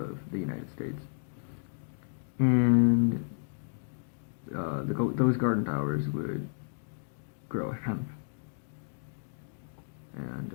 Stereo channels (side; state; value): right; silent; digital silence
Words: the United States, and those garden towers would grow hemp. And